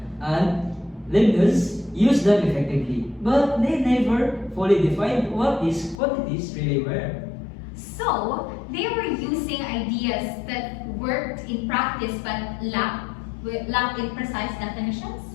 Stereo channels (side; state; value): right; drops out; at 6.0 s